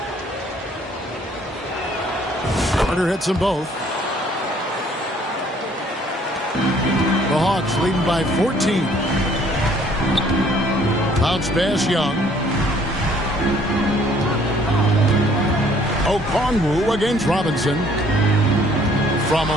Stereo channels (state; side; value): normal; both; correlation 0.60